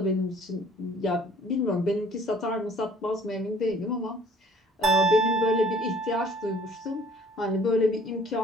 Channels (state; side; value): normal; both; correlation 0.54